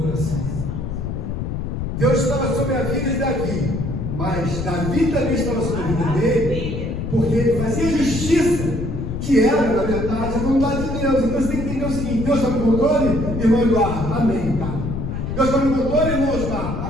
coração. Deus estava sobre a vida de Davi, mas Davi também estava sobre a vida dele, porque ele fazia justiça, que era, na verdade, a vontade de Deus. Então você tem que entender o seguinte: Deus está no controle, irmão Eduardo, amém, tá? Deus está no controle, irmão Osmar,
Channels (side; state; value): left; noise; rumble, 4 dB below the sound